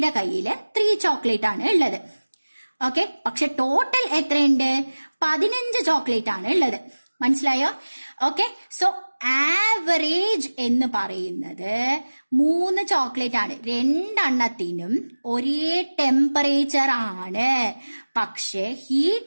കയ്യില് 3 ചോക്ലേറ്റ് ആണ് ഉള്ളത്. ഓക്കെ, പക്ഷെ ടോട്ടൽ എത്രയുണ്ട്? 15 ചോക്ലേറ്റ് ആണ് ഉള്ളത്. മനസ്സിലായോ? ഓക്കെ, സോ ആവറേജ് എന്ന് പറയുന്നത് 3 ചോക്ലേറ്റ് ആണ്. 2 എണ്ണത്തിനും ഒരേ ടെമ്പറേച്ചർ ആണ്. പക്ഷെ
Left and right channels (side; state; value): both; inverted; correlation -1.00